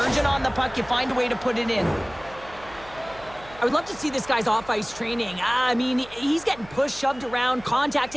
urgent on the puck, you find a way to put it in. I would love to see this guy's off-ice training. I mean, he's getting pushed, shoved around,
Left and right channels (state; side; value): noise; right; hum, 20 dB below the sound